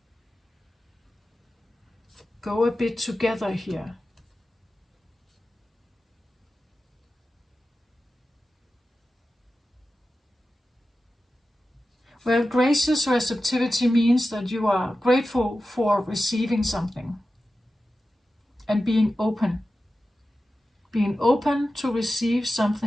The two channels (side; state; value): both; normal; correlation 0.93